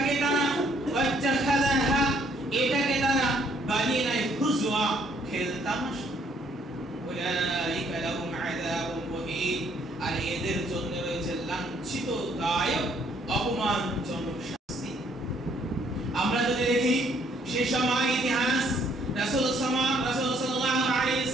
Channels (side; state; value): both; normal; correlation 0.66